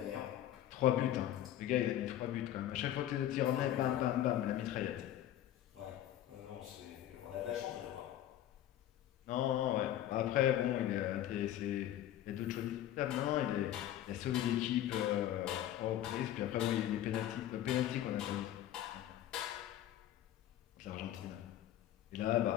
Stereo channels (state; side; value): quieter; right; 12.2 dB